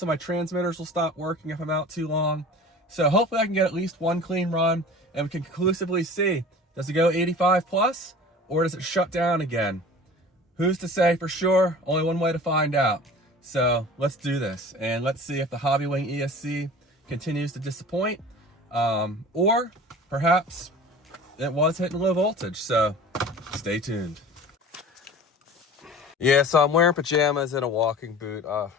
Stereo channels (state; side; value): normal; both; correlation 0.40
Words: my transmitters will stop working if I'm out too long. So hopefully I can get at least one clean run and we can conclusively see, does it go 85 plus or does it shut down again? Who's to say for sure? Only one way to find out. So let's do this and let's see if the Hobby Wing ESC continues to disappoint, or perhaps it was hitting low voltage. So stay tuned. Yeah, so I'm wearing pajamas and a walking boot.